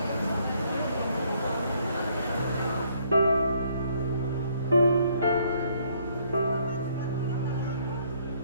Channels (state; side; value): inverted; both; correlation -0.67